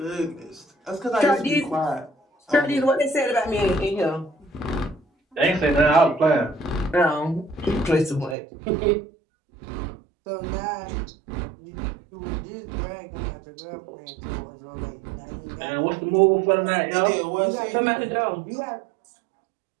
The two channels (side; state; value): left; drops out; at 8.3 s